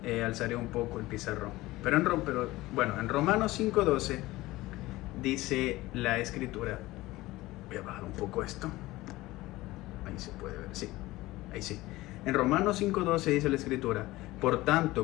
alzaré un poco el pizarrón. Pero en Romanos 5:12 dice la escritura. Voy a bajar un poco esto. Ahí se puede ver, sí. Ahí sí. En Romanos 5:12 dice la escritura: por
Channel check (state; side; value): quieter; right; 18.6 dB